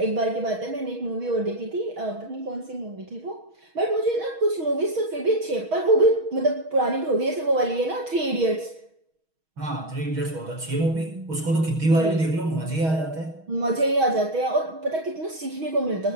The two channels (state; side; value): late; left; 6.3 ms